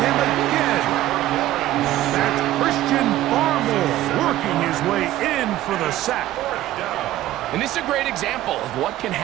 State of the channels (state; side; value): quieter; left; 14.5 dB